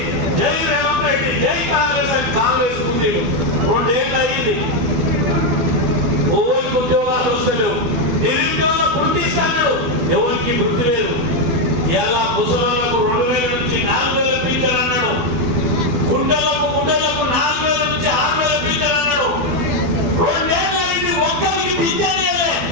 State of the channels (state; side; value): late; left; 12 ms